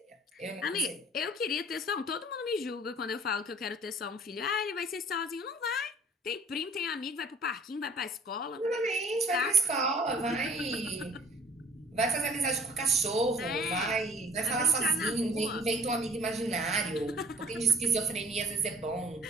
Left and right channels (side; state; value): both; normal; correlation 0.53